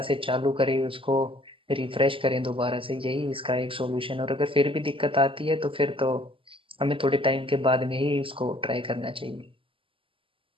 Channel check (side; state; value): left; late; 0.26 ms